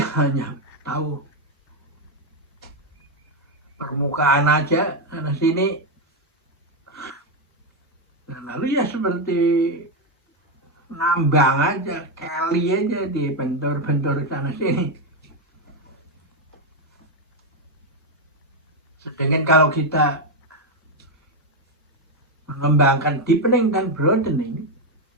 tahu permukaan aja sana sini, dan lalu ya seperti nambang aja, keli aja, di bentor-bentor sana sini. Sedangkan kalau kita mengembangkan deepening dan broadening,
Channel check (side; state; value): both; normal; correlation 0.05